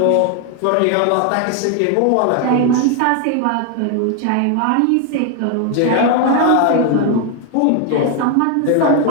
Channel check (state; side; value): different; both; correlation 0.01